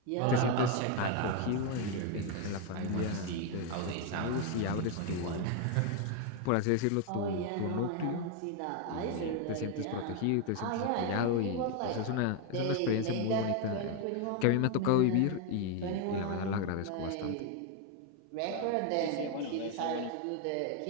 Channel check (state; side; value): different; both; correlation 0.01